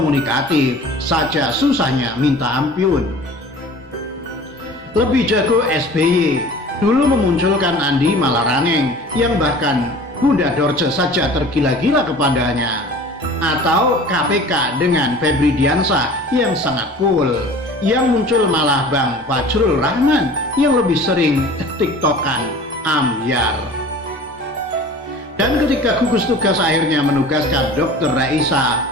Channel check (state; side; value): normal; both; correlation 0.43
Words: saja susahnya minta ampun. Lebih jago SBY, dulu memunculkan Andi Malarangeng yang bahkan Bunda Dorce saja tergila-gila kepadanya. Atau KPK dengan Febri Diansah yang sangat cool. Yang muncul malah Bang Fajrul Rahman yang lebih sering tiktokan ambyar. Dan ketika gugus tugas akhirnya menugaskan Dr. Reisa